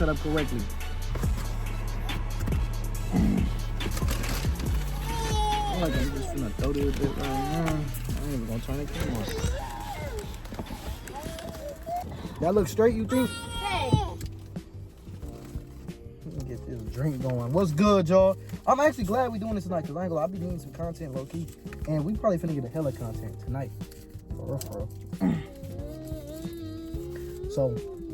up correctly. I like I'm just gonna throw this bit right now. I ain't even gonna turn the camera on. That looks straight, you think? Hey. Let me get this drink going. What's good, y'all? I'm actually glad we're doing this tonight, because I ain't gonna lie, I'll be needing some content low-key. And we probably finna get a hella content tonight. For real. So,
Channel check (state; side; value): identical; both; correlation 1.00